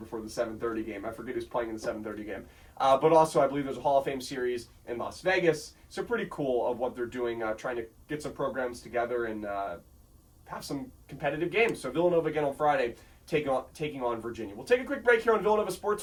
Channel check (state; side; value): identical; both; correlation 1.00